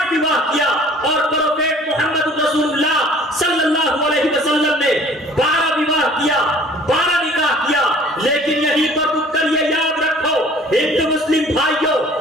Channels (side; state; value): both; normal; correlation 0.51